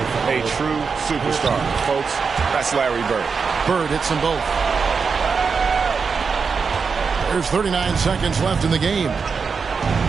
a true superstar. Folks, that's Larry Bird. Bird hits them both. There's 39 seconds left in the game.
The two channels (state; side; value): quieter; left; 5.4 dB